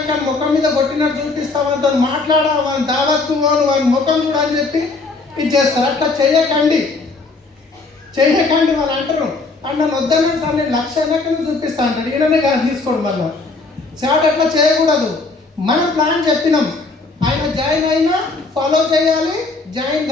కానీ ముఖం మీద కొట్టినట్టు చూపిస్తా, వాళ్ళతో మాట్లాడా, వాళ్ళ దావత్తు వాళ్ళ ముఖం కూడా అని చెప్పి ఇది చేస్తారు. అట్లా చేయకండి. వాళ్ళు అంటారు నన్ను వద్దన్నాను సార్, నేను 1,00,000 అయినా కానీ చూపిస్తా అంటాడు. ఈయననే కాదు తీసుకోండి. మళ్ళీ చాట్ అట్లా చేయకూడదు. మనం ప్లాన్ చెప్పినాం, ఆయన జాయిన్ అయినా ఫాలో చేయాలి, జాయిన్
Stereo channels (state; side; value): quieter; right; 3.7 dB